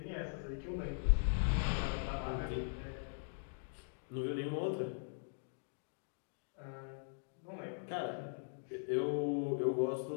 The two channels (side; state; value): right; silent; digital silence